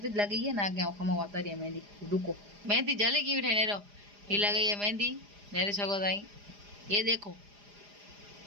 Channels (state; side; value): late; left; 4.9 ms